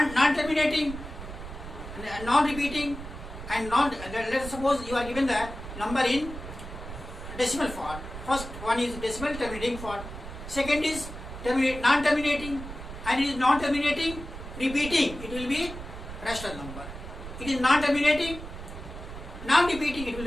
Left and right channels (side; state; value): right; noise; rumble, 11 dB below the sound